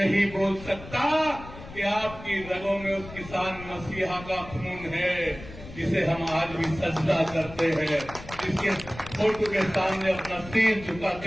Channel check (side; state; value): left; noise; rumble, 15 dB below the sound